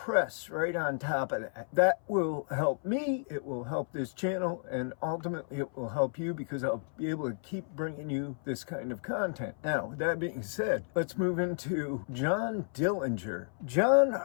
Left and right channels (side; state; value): right; silent; 56 dB below the other